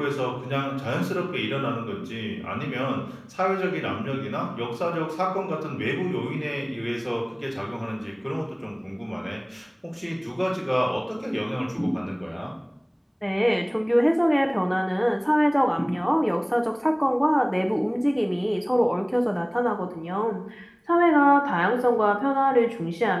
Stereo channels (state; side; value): identical; both; correlation 1.00